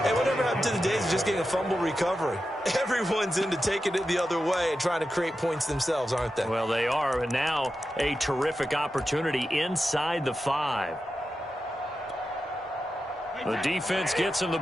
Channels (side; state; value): both; normal; correlation 0.90